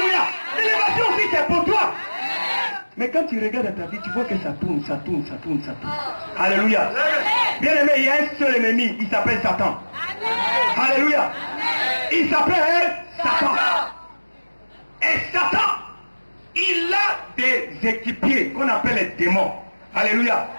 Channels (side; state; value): both; inverted; correlation -1.00